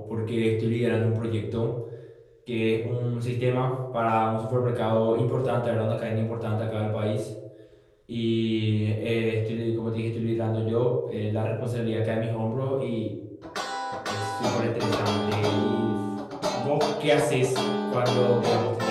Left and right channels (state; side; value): identical; both; correlation 1.00